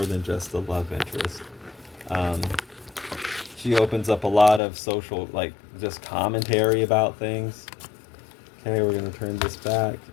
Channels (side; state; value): right; drops out; at 4.6 s